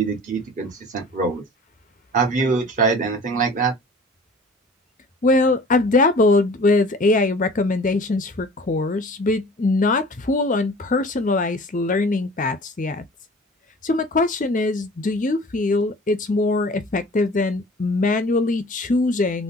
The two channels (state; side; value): normal; both; correlation 0.45